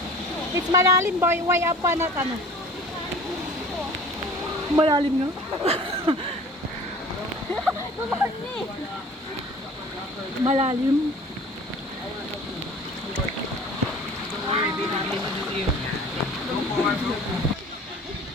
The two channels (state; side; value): normal; both; correlation 0.45